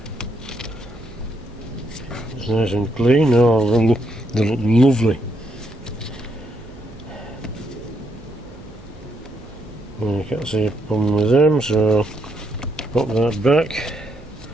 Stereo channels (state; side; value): noise; right; hum, 21 dB below the sound